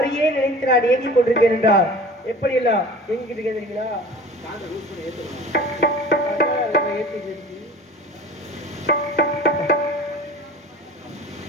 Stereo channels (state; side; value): normal; both; correlation 0.41